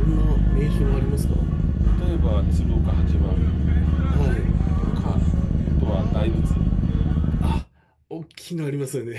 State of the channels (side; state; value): both; identical; correlation 1.00